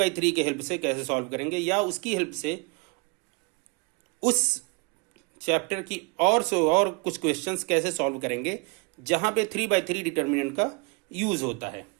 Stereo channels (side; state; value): left; quieter; 29.6 dB